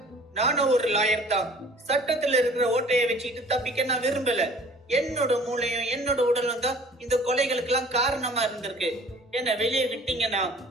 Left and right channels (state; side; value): normal; both; correlation 0.50